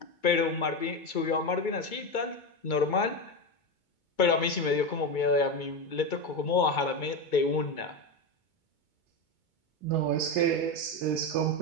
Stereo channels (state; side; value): late; right; 2.2 ms